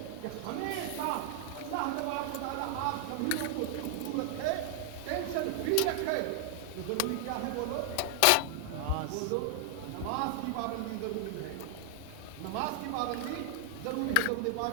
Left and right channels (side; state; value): both; different; correlation 0.00